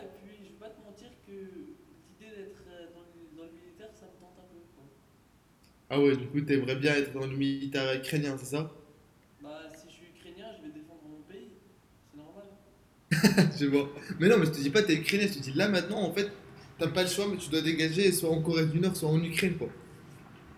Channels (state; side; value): identical; both; correlation 1.00